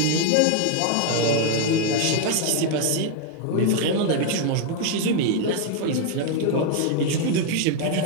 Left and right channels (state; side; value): different; both; correlation 0.00